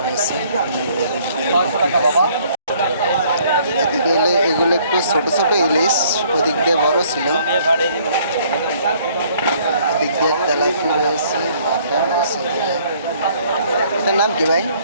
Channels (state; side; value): inverted; both; correlation -0.61